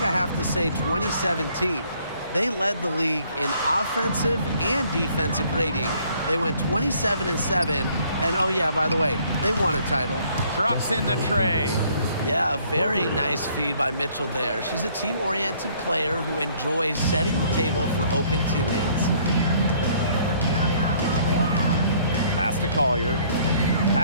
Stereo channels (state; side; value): inverted; both; correlation -0.61